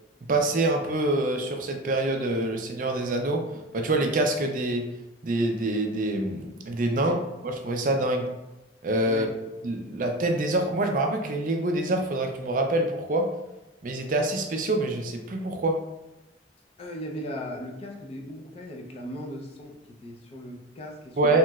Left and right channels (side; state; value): both; normal; correlation 0.26